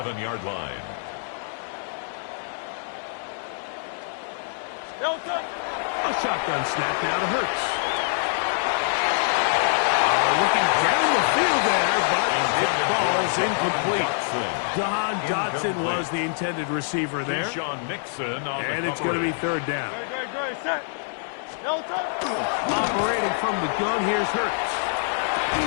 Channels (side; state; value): right; silent; digital silence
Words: line. No touch. A shotgun snap now to Hurts. Looking down the field there, but it falls incomplete. Don Dotson was the intended receiver there. Sean Nixon on and the it's going to be third down. Great, set. No touch. Operating from the gun, here's Hurts.